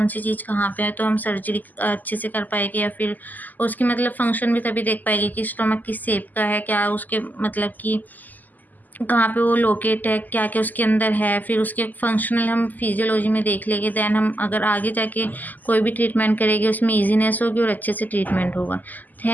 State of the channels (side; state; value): right; late; 0.083 ms